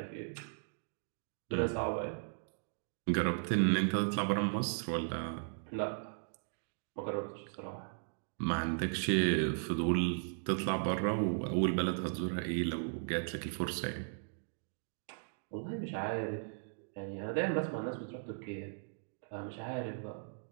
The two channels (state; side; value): silent; left; digital silence